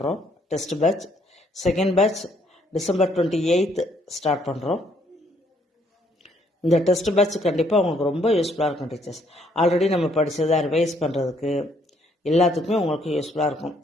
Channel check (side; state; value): both; normal; correlation 0.68